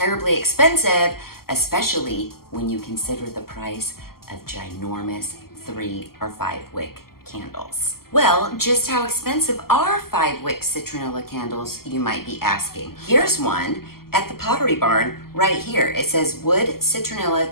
expensive, especially when you consider the price of ginormous 3 or 5 wick candles. Well, just how expensive are 5 wick citronella candles, you might be asking. Here's one at the Pottery Barn right here. It says wood citronella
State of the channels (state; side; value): late; right; 0.93 ms